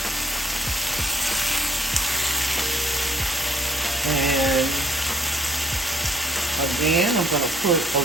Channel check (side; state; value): both; normal; correlation 0.62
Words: And again, I'm going to put a